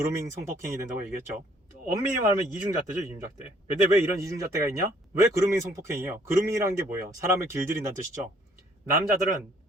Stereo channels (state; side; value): normal; both; correlation 0.62